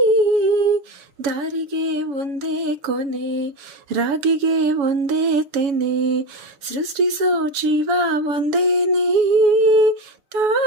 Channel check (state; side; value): late; left; 7.1 ms